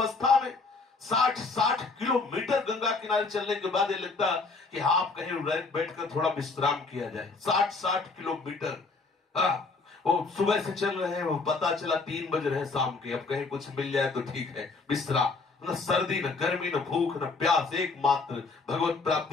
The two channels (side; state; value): right; quieter; 4.0 dB